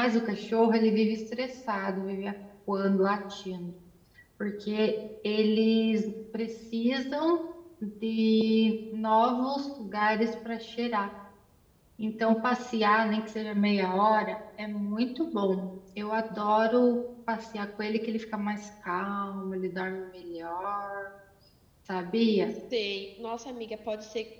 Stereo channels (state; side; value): identical; both; correlation 1.00